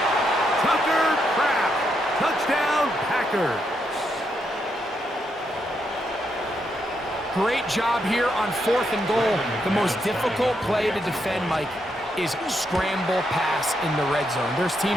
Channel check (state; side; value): normal; both; correlation 0.80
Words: Tucker Kraft. Touchdown, Packers. Great job here on 4th and goal. The most difficult play to defend, Mike, is scramble pass in the red zone. There's